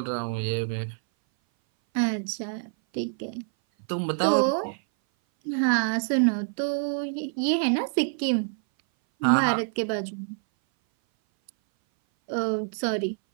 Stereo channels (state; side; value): silent; left; 58 dB below the other